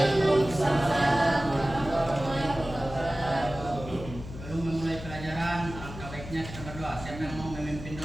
warahmatullahi wabarakatuh. Sebelum memulai pelajaran, alangkah baiknya kita berdoa. Siapa yang mau memimpin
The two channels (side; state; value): left; noise; hum, 12 dB below the sound